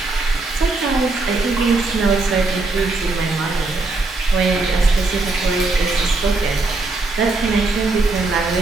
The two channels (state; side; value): quieter; left; 3.4 dB